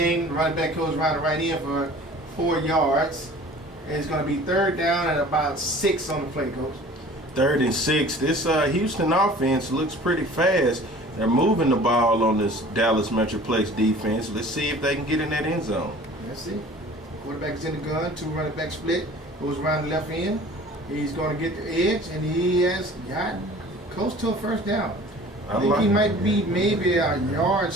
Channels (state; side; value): normal; both; correlation 0.46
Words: the running back goes right in for 4 yards. And it's going to be 3rd down and about 6 on the play, Coach. 3rd and 6. This Houston offense looks pretty fast. They're moving the ball on this Dallas Metroplex defense. Let's see if they can get in that end zone. Let's see. Quarterback is in the gun, 2 running back split, goes around the left end. He's going to get the edge, and he has got close to a 1st down. I think he might be maybe a yard